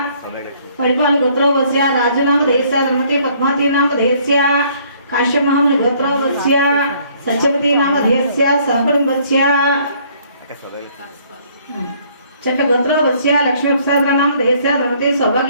परिपाल गोत्रोपत्स्य राजू नाम देहस्य धर्मपत्नी पद्मावती नाम देहस्य काश्यप महामुनि गोत्रोपत्स्य सत्यवती नाम देहस्य सहकुटुंबस्य चट गोत्रोपत्स्य लक्ष्मी प्रसाद नाम देहस्य धर्मपत्नी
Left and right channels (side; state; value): both; inverted; correlation -0.62